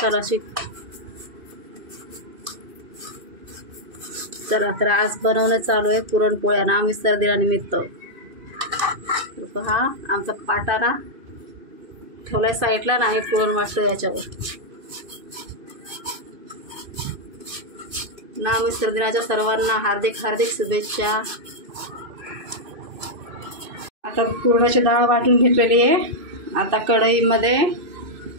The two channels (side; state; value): left; late; 2.5 ms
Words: अशी. चला तर आज बनवणं चालू आहे पुरणपोळ्या ना मिस्टर दिनानिमित्त. पहा आमचा पाटा ना ठेवलाय साईडला ना, हे पुरण वाटतं याच्यावर ना. मिस्टर दिनाच्या सर्वांना हार्दिक हार्दिक शुभेच्छा. आता पुरणाची डाळ वाटून घेतलेली आहे. आता कढईमध्ये